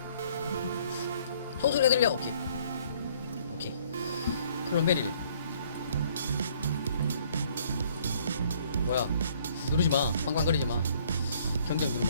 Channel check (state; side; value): inverted; both; correlation -0.61